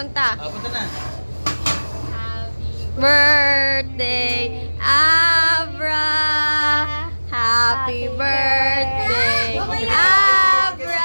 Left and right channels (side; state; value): both; inverted; correlation -1.00